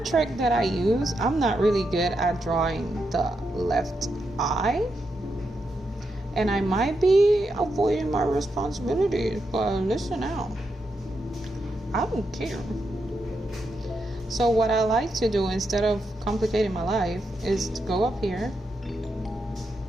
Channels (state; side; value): normal; both; correlation 0.84